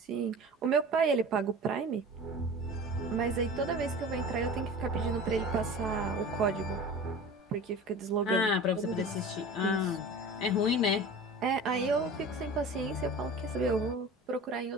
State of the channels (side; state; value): both; normal; correlation 0.37